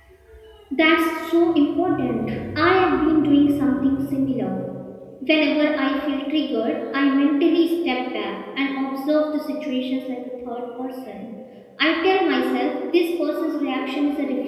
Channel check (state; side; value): identical; both; correlation 1.00